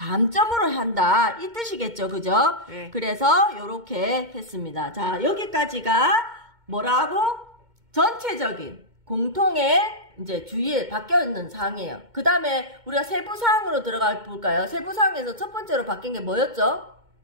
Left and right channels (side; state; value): left; late; 2.2 ms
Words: 한다. 이 뜻이겠죠. 그죠? 네. 그래서 요렇게 했습니다. 자, 여기까지가 뭐라고? 전체적인 공통의 이제 주의에 바뀌어 있는 사항이에요. 그 다음에 우리가 세부 사항으로 들어가 볼까요? 세부 사항에서 첫 번째로 바뀐 게 뭐였죠?